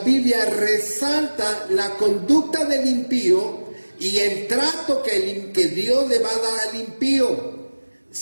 resalta la conducta del impío y el trato que Dios le va a dar al impío.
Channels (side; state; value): both; inverted; correlation -1.00